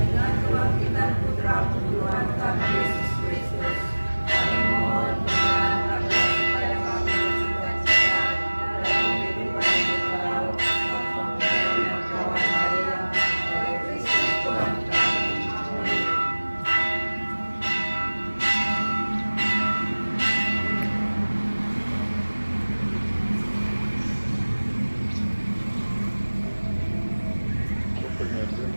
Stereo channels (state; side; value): inverted; both; correlation -1.00